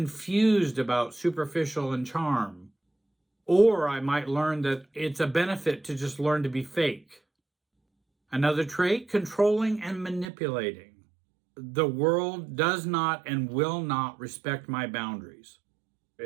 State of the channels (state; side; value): drops out; left; at 10.3 s